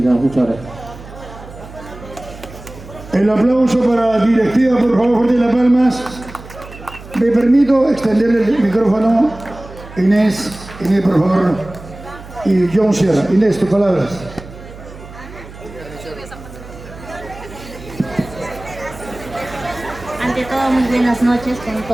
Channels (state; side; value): noise; right; hum, 16 dB below the sound